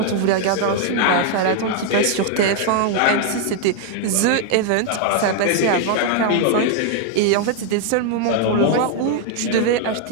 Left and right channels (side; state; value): both; different; correlation 0.00